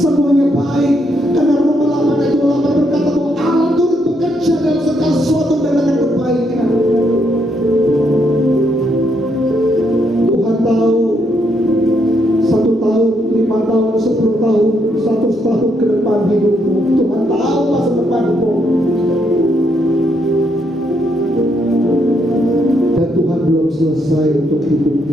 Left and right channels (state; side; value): normal; both; correlation 0.76